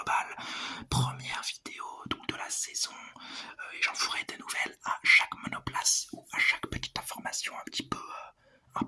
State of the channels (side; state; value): both; identical; correlation 1.00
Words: Première vidéo donc de la saison, et j'en ferai des nouvelles à chaque monoplace ou à chaque petite information un petit peu